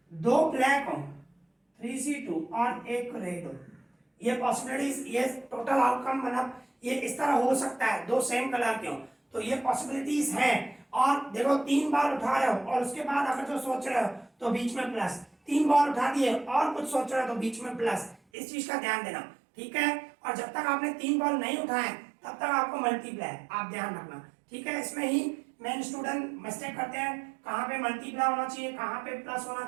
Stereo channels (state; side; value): drops out; left; at 18.2 s